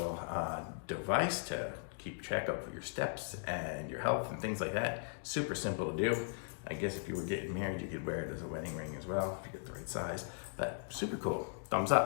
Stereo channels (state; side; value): silent; right; digital silence